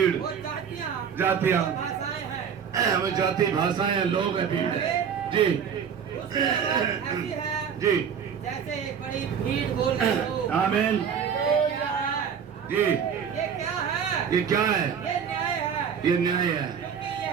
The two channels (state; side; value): quieter; left; 7.3 dB